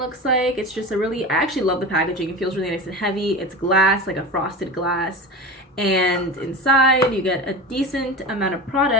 like. It's just I actually love the packaging. It feels really nice and heavy. It's glass, like a frosted glass. And inside you get a decent amount of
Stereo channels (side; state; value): both; normal; correlation 0.29